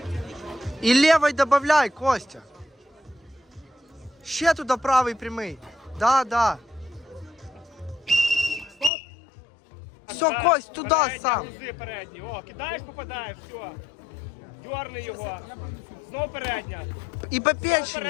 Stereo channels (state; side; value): drops out; right; at 8.9 s